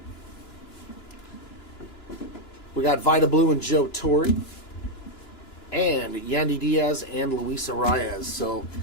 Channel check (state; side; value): late; right; 2.9 ms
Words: We got Vida Blue and Joe Torre. And Yandy Diaz and Luis Arias. So